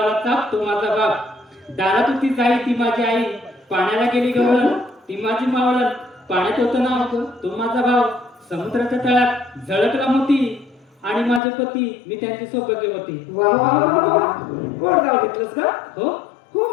चाप तो माझा बाप. दारात होती जाई ती माझी आई, पाण्याला गेली गवळण ती माझी मावळण. पाण्यात होतं नाव तो माझा भाव, समुद्राच्या तळात झळकला मोती आणि माझे पती मी त्यांची सौभाग्य होती. वा वा वा वा वा. गोड नाव घेतलंस का हो हो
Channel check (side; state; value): right; drops out; at 11.4 s